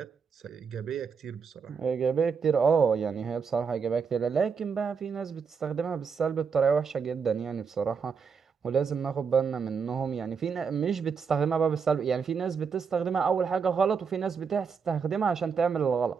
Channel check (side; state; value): left; quieter; 6.0 dB